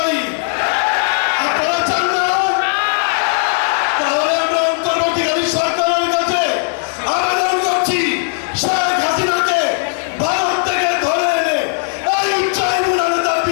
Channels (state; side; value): silent; right; digital silence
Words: আপনারা চান না? তাহলে আমরা অন্তর্বর্তীকালী সরকারের কাছে আবেদন করছি, শেখ হাসিনাকে ভারত থেকে ধরে এনে এই ট্রাইব্যুনালে তার